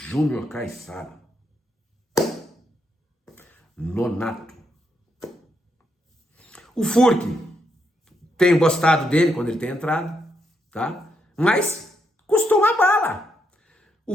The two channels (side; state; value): both; normal; correlation 0.79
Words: Caissara, Nonato. O Furque, tenho gostado dele quando ele tem entrado, tá? Mas custou uma bala. O